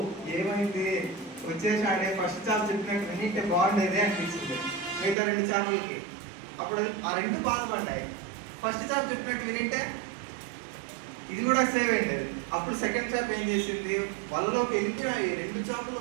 ఏమైంది, వచ్చేసాడే, ఫస్ట్ చేప చెప్పినట్టు వినింటే బాగుండేది అనిపించింది మిగతా 2 చేపలకి. అప్పుడు ఆ 2 బాధపడ్డాయి. ఫస్ట్ చేప చెప్పినట్టు వినింటే ఇది కూడా సేవ్ అయింది. అప్పుడు సెకండ్ చేప ఏం చేసింది? వలలోకి వెళ్ళిపోయినాయి. 2 చేపలు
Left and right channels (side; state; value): left; drops out; at 5.2 s